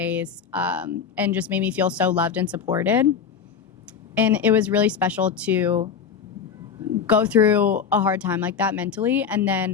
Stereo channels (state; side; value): quieter; right; 6.9 dB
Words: and just made me feel so loved and supported. And it was really special to go through a hard time like that mentally, and